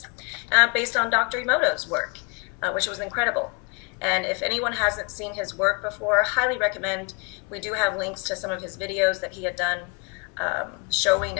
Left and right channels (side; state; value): right; quieter; 32.7 dB